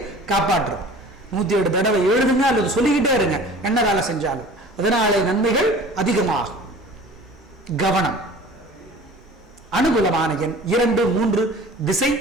காப்பாற்றும். 107 தடவை எழுதுங்க அல்லது சொல்லிக்கிட்டே இருங்க என்ன வேலை செஞ்சாலும். அதனாலே நன்மைகள் அதிகமாகும். கவனம். அனுகூலமான எண் 2, 3. திசை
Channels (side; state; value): both; normal; correlation 0.44